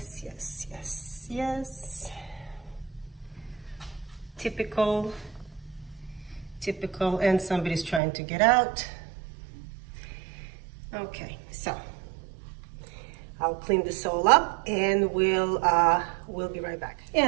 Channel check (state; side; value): drops out; left; at 8.0 s